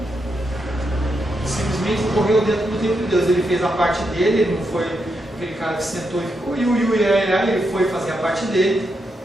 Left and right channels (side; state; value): both; normal; correlation 0.83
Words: Simplesmente correu dentro do tempo de Deus. Ele fez a parte dele, ele não foi aquele cara que sentou e ficou ele foi fazer a parte dele,